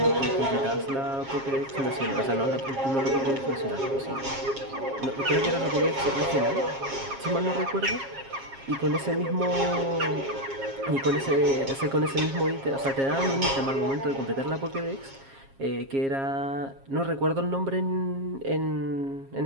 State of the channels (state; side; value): late; left; 7.4 ms